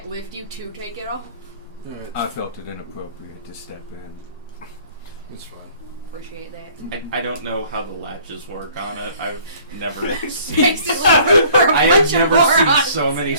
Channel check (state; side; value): inverted; both; correlation -0.55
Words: lift you to take it off. I felt it inappropriate to step in. It's fine. Appreciate that. I don't know how the latches work on it. I've never seen. Basically, for a I bunch have of never seen morons. so many